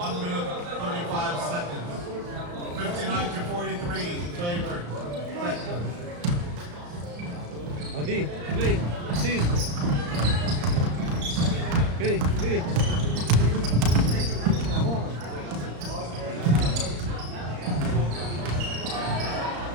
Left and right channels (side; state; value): left; late; 34 ms